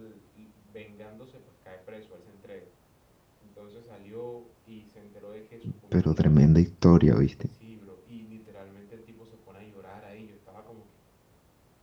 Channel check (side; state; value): both; identical; correlation 1.00